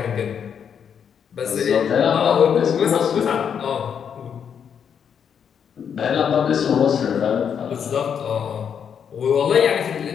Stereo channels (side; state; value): right; quieter; 7.7 dB